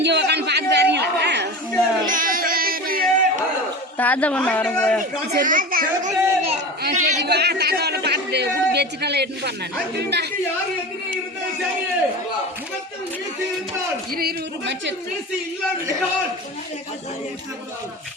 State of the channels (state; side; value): normal; both; correlation 0.30